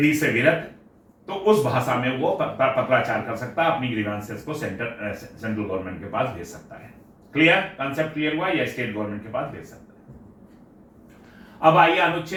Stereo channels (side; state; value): both; identical; correlation 1.00